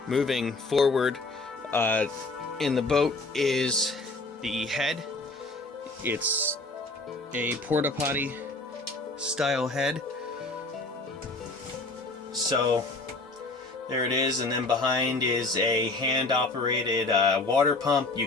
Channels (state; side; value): quieter; right; 3.2 dB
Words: Moving forward, in the boat is the head. It's a porta potty style head. So there it is, and then behind is a hand operated water pump